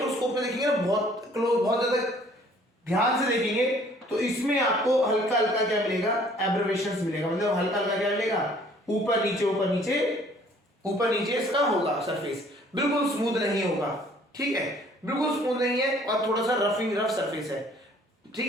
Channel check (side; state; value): both; normal; correlation 0.57